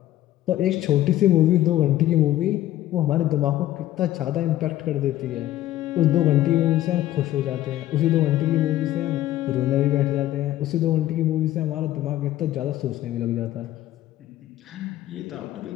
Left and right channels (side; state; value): right; quieter; 14.0 dB